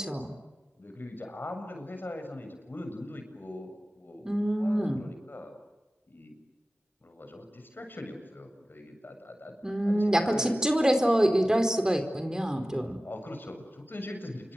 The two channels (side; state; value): both; normal; correlation 0.96